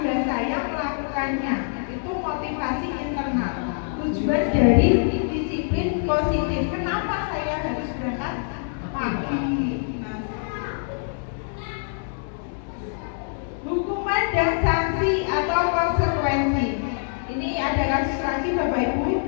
saya melakukannya. Itu motivasi internal. Tujuan dari disiplin positif. Kenapa saya harus berangkat pagi? Hukuman dan sanksi atau konsekuensi. Ini ada kasus lagi Bapak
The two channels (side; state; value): right; silent; 62 dB below the other